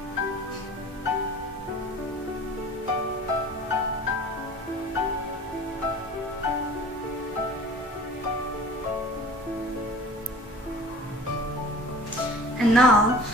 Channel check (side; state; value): both; normal; correlation 0.43